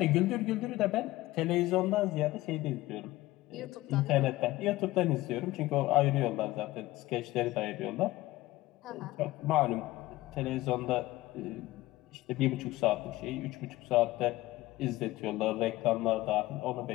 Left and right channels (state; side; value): quieter; right; 17.8 dB